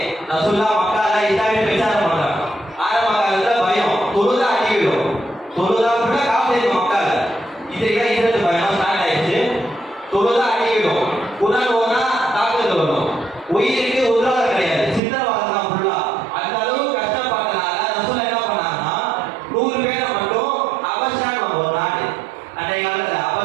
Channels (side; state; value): left; drops out; at 15.0 s